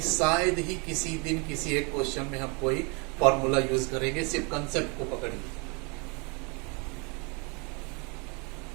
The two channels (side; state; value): left; quieter; 32.2 dB